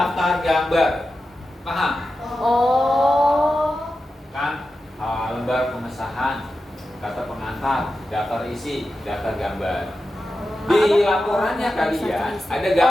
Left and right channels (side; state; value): both; normal; correlation 0.91